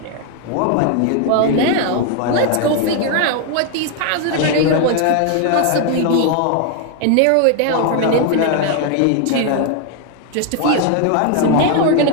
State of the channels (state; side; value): different; both; correlation 0.01